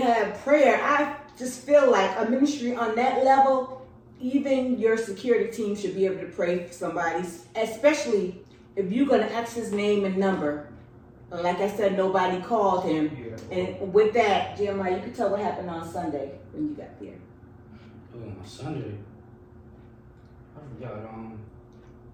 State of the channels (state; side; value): identical; both; correlation 1.00